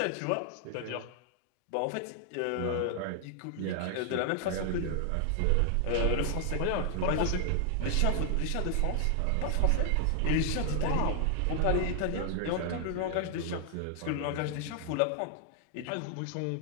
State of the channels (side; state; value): both; different; correlation 0.00